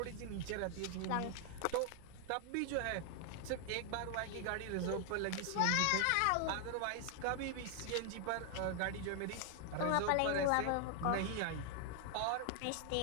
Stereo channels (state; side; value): different; both; correlation 0.00